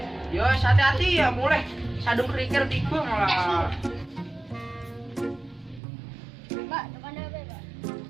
Yo, hati-hati ya mulai. Sadung kerikil tiba malah. Mbak, tekan apa, Mbak?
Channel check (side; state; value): left; drops out; at 5.8 s